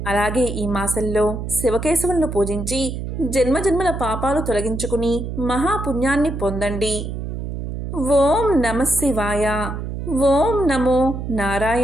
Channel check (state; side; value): noise; right; hum, 6 dB below the sound